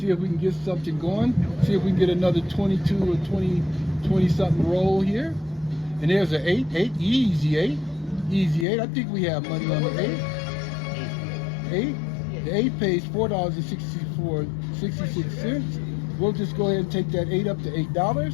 if we can get something going. See if we can get another 22 or 20 something roll here. And there's an 8, easy 8. I think we have money on the 8. The 8 pays $4.66. We'll just go ahead and take that 8 up to $8.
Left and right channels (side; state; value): right; drops out; at 8.7 s